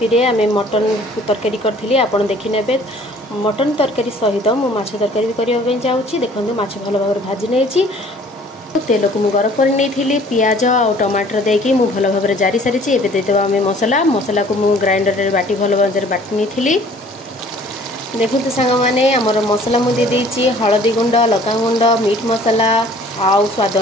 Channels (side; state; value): both; normal; correlation 0.53